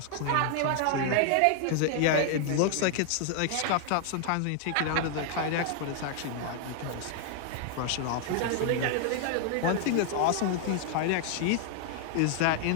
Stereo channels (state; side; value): different; both; correlation 0.00